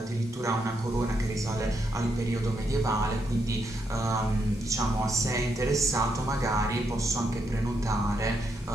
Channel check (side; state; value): both; normal; correlation 0.79